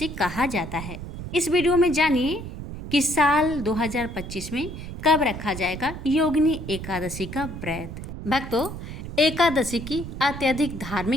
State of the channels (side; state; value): right; noise; rumble, 9 dB below the sound